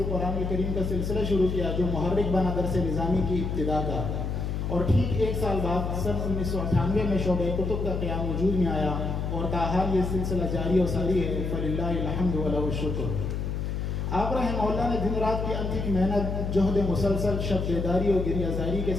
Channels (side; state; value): left; noise; hum, 2 dB below the sound